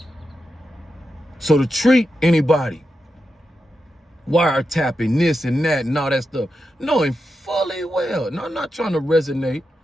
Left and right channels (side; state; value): both; normal; correlation 0.88